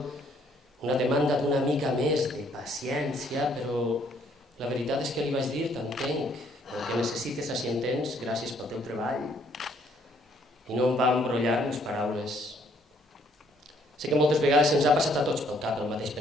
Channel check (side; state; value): both; normal; correlation 0.66